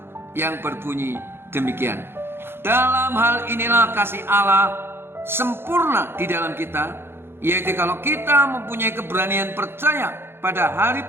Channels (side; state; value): left; late; 0.11 ms